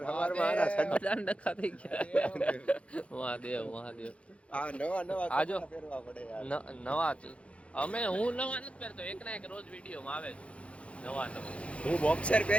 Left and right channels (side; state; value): right; late; 0.062 ms